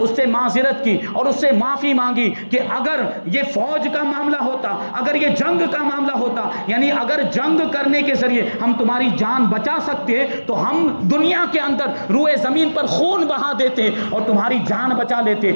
سے معذرت کی اور اس سے معافی مانگی کہ اگر یہ فوج کا معاملہ ہوتا، اگر یہ جنگ کا معاملہ ہوتا، یعنی اگر جنگ کرنے کے ذریعے ہم تمہاری جان بچا سکتے تو ہم دنیا کے اندر روئے زمین پر خون بہا دیتے اور تمہاری جان بچا لیتے،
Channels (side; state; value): both; inverted; correlation -1.00